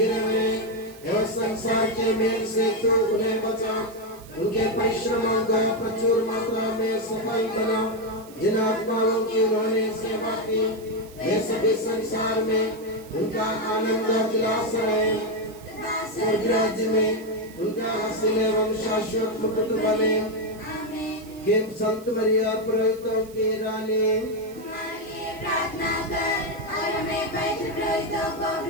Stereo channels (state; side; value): noise; right; hiss, 22 dB below the sound